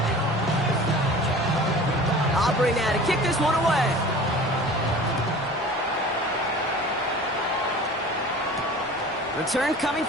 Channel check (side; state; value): both; normal; correlation 0.41